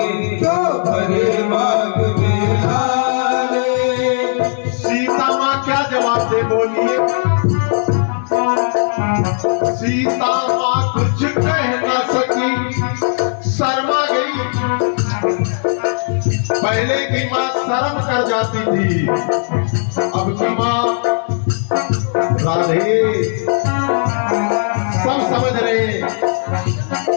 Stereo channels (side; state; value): right; silent; digital silence